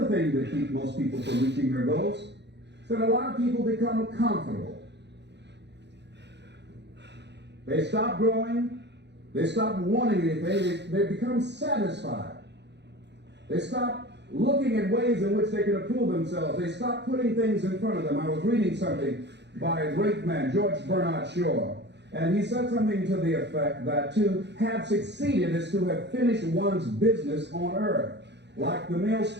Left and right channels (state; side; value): late; left; 0.50 ms